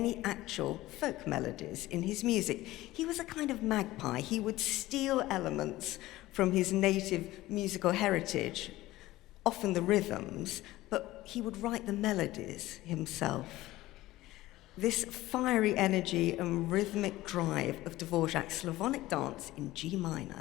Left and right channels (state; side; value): quieter; right; 17.1 dB